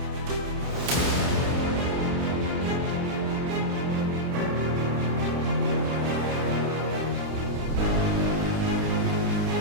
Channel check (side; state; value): left; late; 29 ms